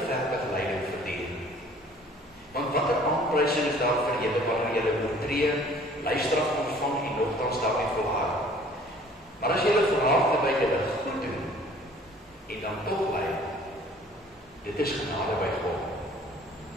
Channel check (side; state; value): both; normal; correlation 0.53